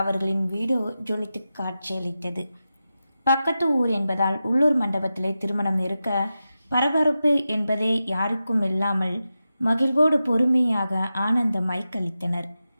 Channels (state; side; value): inverted; both; correlation -0.91